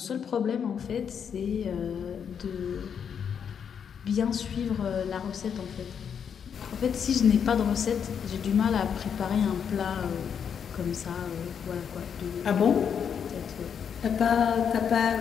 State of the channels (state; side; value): quieter; right; 7.5 dB